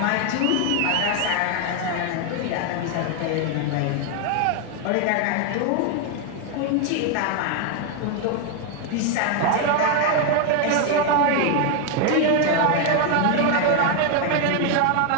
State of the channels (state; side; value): different; both; correlation 0.01